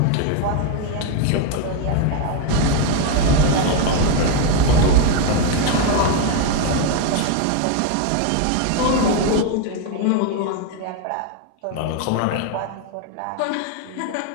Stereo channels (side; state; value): both; different; correlation 0.01